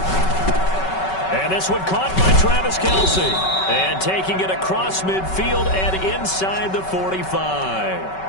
And this one caught by Travis Kelce. And taking it across midfield and inside the 45.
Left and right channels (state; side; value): late; right; 5.3 ms